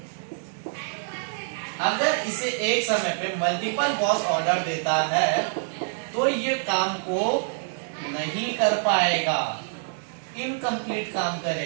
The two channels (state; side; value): silent; left; digital silence